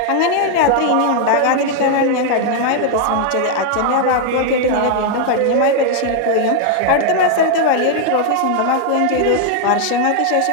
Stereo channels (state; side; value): different; both; correlation 0.00